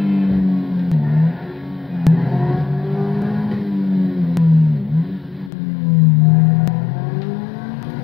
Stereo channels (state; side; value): drops out; right; at 5.5 s